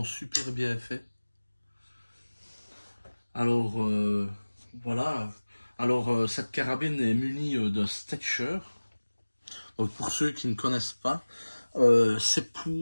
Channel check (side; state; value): both; inverted; correlation -1.00